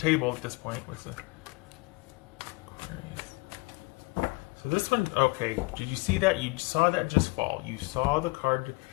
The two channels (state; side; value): quieter; right; 26.9 dB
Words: at this point with the. So this one, okay. Did you see that? You saw that just fall. You saw the card. It